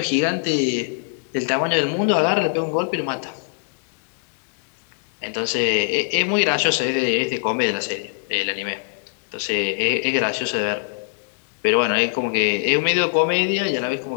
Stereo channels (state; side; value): silent; right; 61 dB below the other